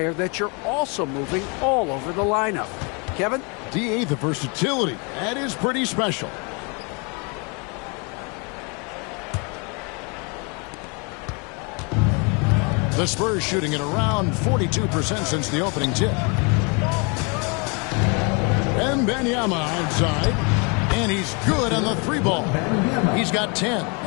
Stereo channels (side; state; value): right; quieter; 32.7 dB